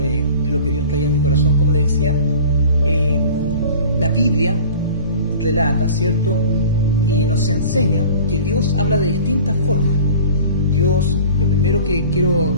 lo que Dios traía a mi corazón. Como les decía, la Biblia relata, ¿cierto? Y nos enseña que Dios habla de distintas formas. Dios, lo primero que quiero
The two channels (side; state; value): both; inverted; correlation -0.42